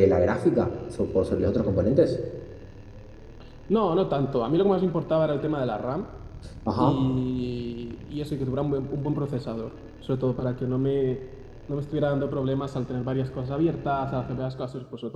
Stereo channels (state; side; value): identical; both; correlation 1.00